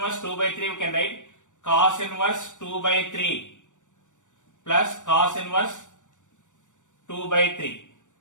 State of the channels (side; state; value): right; late; 0.85 ms